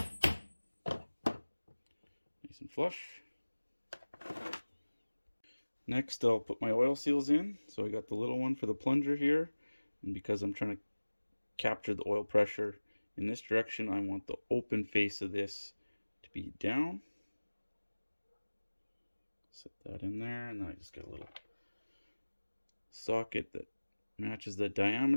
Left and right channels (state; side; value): inverted; both; correlation -1.00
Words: nice and flush. Next, I'll put my oil seals in. So I got the little one for the plunger here, and because I'm trying to capture the oil pressure in this direction, I want the open face of this to be down. Set that in there, and then I just get a little socket that matches the